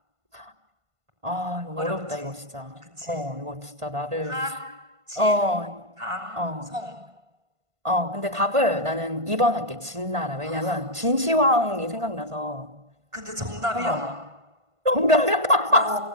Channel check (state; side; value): late; left; 1.5 ms